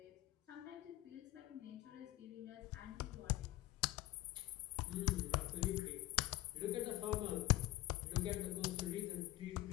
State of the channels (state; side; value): quieter; right; 17.1 dB